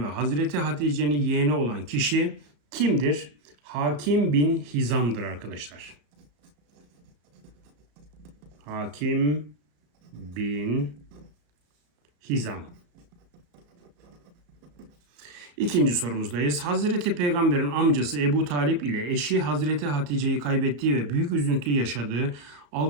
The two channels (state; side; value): late; left; 34 ms